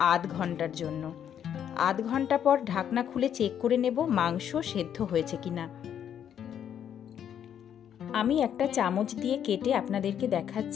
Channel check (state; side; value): quieter; right; 9.2 dB